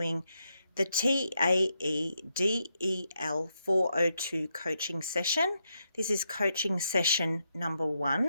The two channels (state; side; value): inverted; both; correlation -0.82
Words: the TAEDEL402 coaching session. This is coaching session number